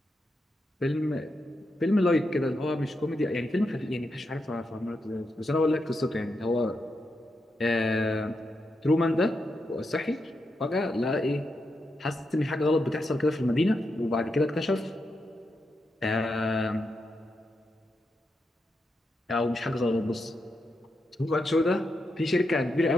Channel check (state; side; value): normal; both; correlation 0.85